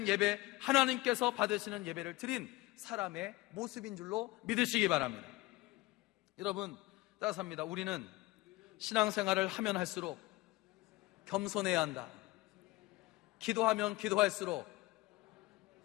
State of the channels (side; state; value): right; quieter; 19.8 dB